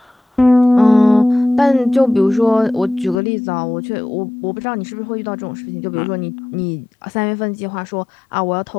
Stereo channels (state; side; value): drops out; right; at 3.2 s